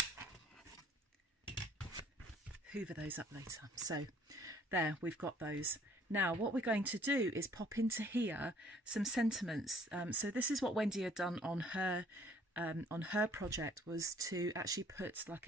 Hoover those up later. So there, we've got those. Now what we're going to do is pop into here some sentiments. So this is what Wendy had done on her project, was to actually put like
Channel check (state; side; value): normal; both; correlation 0.58